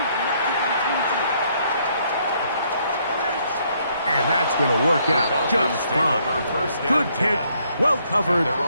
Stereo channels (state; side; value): inverted; both; correlation -0.69